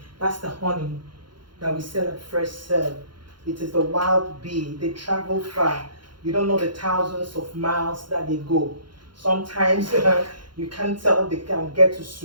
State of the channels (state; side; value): late; left; 0.72 ms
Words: that's the honey that we sell at Fresh Serve. It is the wild bee. They travel far. You don't know the thousands of miles that they go. Sometimes you can't tell they can get to